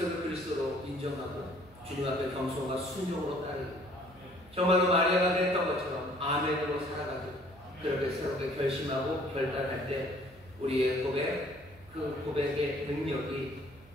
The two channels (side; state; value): right; noise; hum, 25 dB below the sound